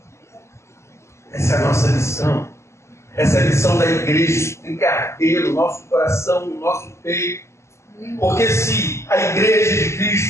Essa é a nossa lição. Essa é a lição da igreja. Tem que arder no nosso coração, no nosso peito. Porque se a igreja de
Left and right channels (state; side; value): late; right; 0.13 ms